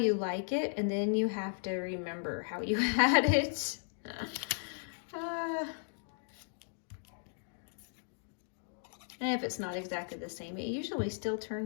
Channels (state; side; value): silent; right; digital silence